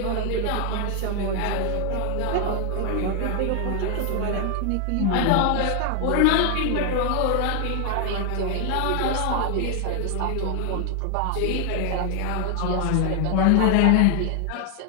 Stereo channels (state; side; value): different; both; correlation 0.00